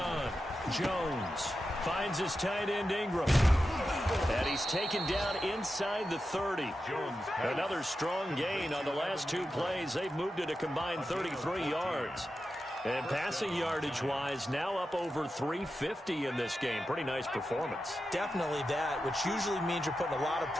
Jones finds his tight end Ingram. And he's taken down inside the 30. Another strong gain on the last 2 plays. They've moved it a combined 33 yards. And passing yardage-wise, now up over 350 in this game. Pretty nice performance. Definitely that, which usually means you're putting a lot of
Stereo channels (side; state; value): both; normal; correlation 0.90